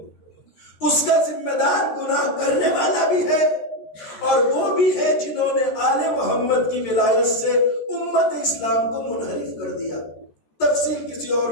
اس کا ذمہ دار گناہ کرنے والا بھی ہے، اور وہ بھی ہے جنہوں نے آل محمد کی ولایت سے امت اسلام کو منحرف کر دیا۔ تفصیل کسی اور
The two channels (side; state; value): right; late; 13 ms